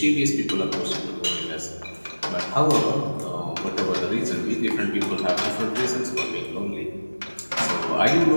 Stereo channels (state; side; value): inverted; both; correlation -1.00